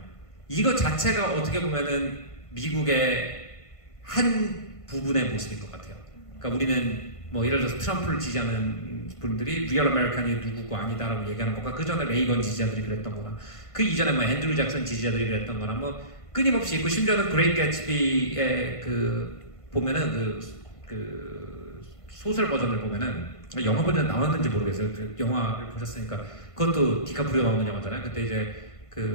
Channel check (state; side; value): late; right; 1.5 ms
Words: 이거 자체가 어떻게 보면은 미국의 한 부분의 모습인 것 같아요. 그러니까 우리는 뭐 예를 들어서 트럼프를 지지하는 분들이 리얼 아메리칸이 누구고 아니다라고 얘기하는 것과 그 전에 레이건 지지자들이 그랬던 거나 그 이전에 뭐 앤드류 잭슨 지지자들이 그랬던 거나 뭐 끊임없이 있고 심지어는 그레이트 개츠비의 그 보면은 그 소설 버전을 보면은 영화 버전 나왔는지 모르겠어요. 그 영화를 보셨으니까 그것도 디카프리오 나오는 영화잖아요. 그때 이제